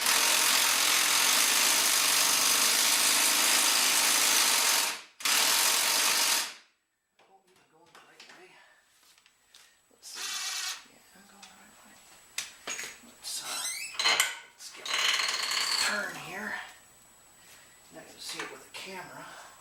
Turn here. Not going to see it with a camera.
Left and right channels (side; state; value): both; identical; correlation 1.00